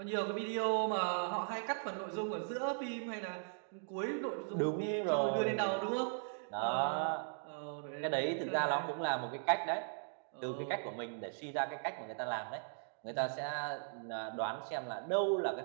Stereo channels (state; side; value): silent; left; digital silence